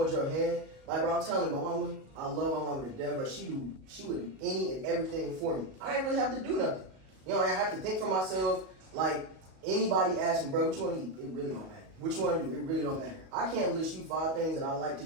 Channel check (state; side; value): late; left; 37 ms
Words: your hand. Like, bro, I'm telling you, my mama, I love my mama to death, but she would do any and everything for me. I didn't really have to do nothing. You know, I have to think for myself. Like, anybody asks me, bro, what you want to eat? It really don't matter. What you want to do? It really don't matter. I can't list you 5 things that I like to